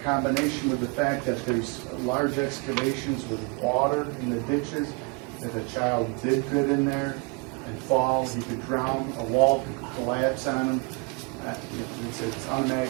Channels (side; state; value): left; quieter; 30.8 dB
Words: combination with the fact that there's large excavations with water in the ditches, if a child did get in there and fall, he could drown, a wall could collapse on him. It's